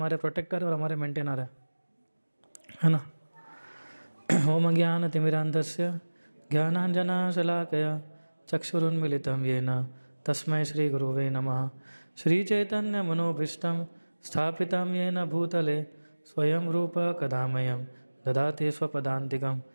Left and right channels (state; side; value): inverted; both; correlation -1.00